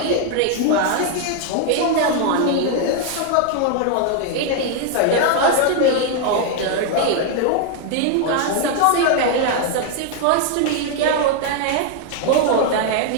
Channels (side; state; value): both; different; correlation 0.00